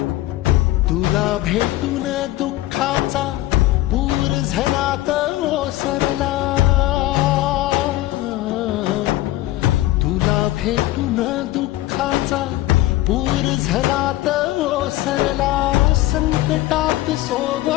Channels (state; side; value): quieter; right; 16.3 dB